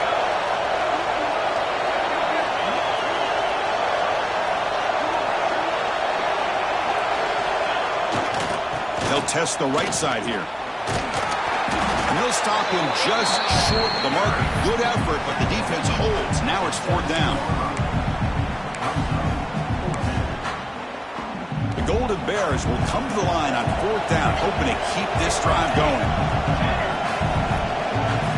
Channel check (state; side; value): identical; both; correlation 1.00